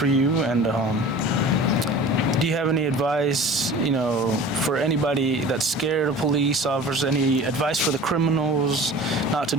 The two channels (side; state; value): both; normal; correlation 0.41